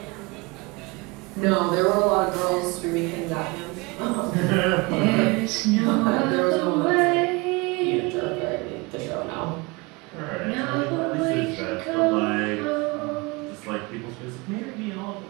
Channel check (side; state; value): left; quieter; 26.0 dB